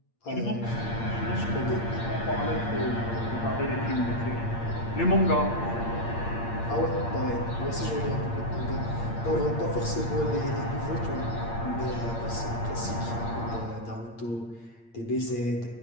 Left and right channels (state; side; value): late; right; 8.7 ms